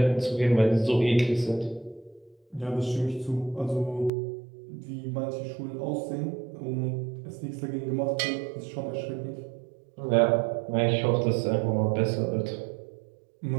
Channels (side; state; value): left; drops out; at 4.1 s